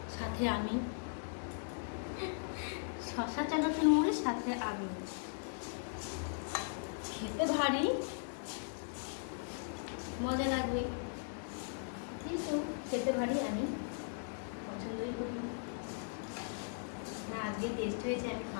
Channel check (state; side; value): silent; right; digital silence